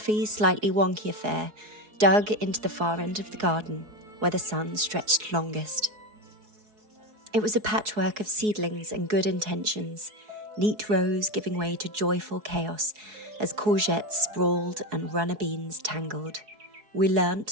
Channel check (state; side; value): late; left; 4.7 ms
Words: slightly wonky affair dug into the far end of the garden where the sun stretched longest. It was a patchwork of seedlings and good intentions, neat rows giving way to joyful chaos as courgettes sprawled and runner beans tangled. We